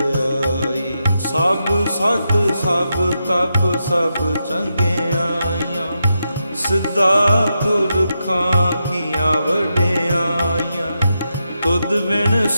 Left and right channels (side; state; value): both; inverted; correlation -0.85